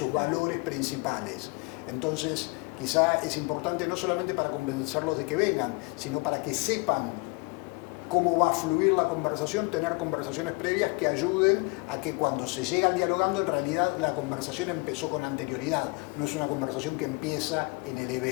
valores principales. Entonces, quizá es importante no solamente para convencerlos de que vengan, sino para que sepan cómo va a fluir la conversación, tener conversaciones previas que ayuden a que cuando se llega al dialogando, en realidad la conversación empezó con anterioridad, no es una conversación que empieza en el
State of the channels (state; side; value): quieter; right; 29.3 dB